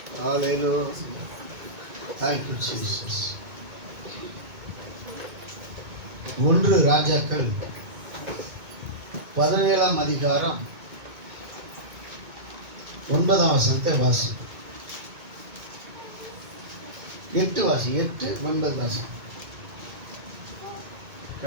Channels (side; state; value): left; late; 2.2 ms